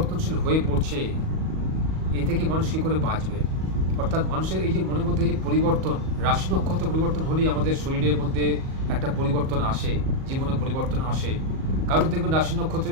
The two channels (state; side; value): late; left; 38 ms